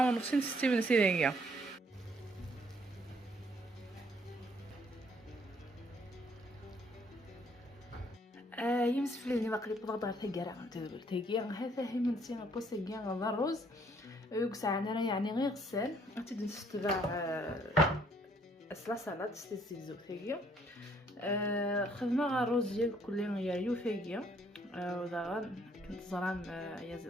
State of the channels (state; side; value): normal; both; correlation 0.65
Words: 4.5 6 من سيدانية. يمسف لي باقي بضغط على ثقيرة ثقيرة هذا هي من سينا بوسيغيان غدا الرز يوكسع انا يعني غير غسال غتبدا تستبع اسلا سلطه تستزيزو ثقيا خدمه غا الرز ديال كل يو ثقيا وذا كنت زران يا